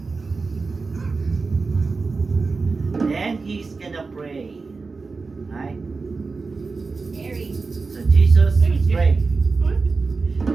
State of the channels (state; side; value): quieter; left; 4.2 dB